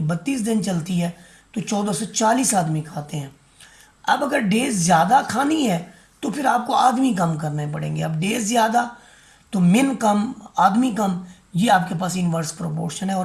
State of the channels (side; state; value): both; identical; correlation 1.00